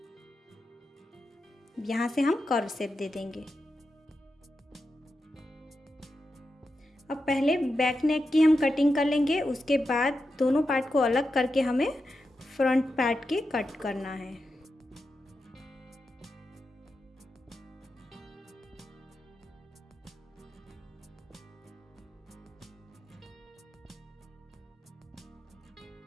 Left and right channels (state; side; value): normal; both; correlation 0.89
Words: यहाँ से हम कर्व शेप दे देंगे। अब पहले बैक नेक की हम कटिंग कर लेंगे, उसके बाद दोनों पार्ट को अलग करके हमें फ्रंट पार्ट की कट करना है।